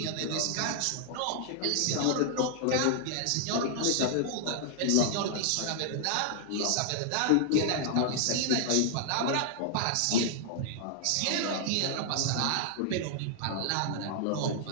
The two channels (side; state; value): both; different; correlation -0.01